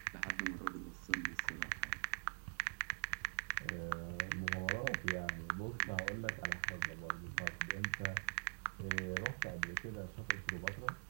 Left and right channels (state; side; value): silent; left; digital silence